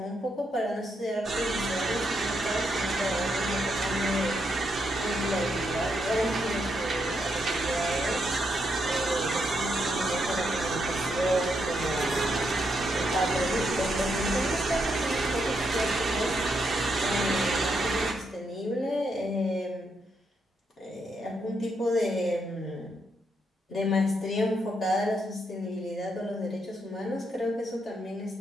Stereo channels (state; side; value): normal; both; correlation 0.79